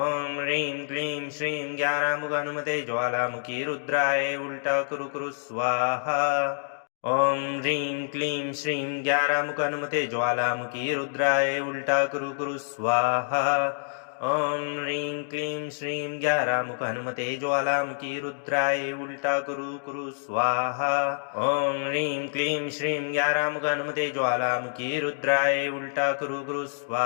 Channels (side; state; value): right; silent; digital silence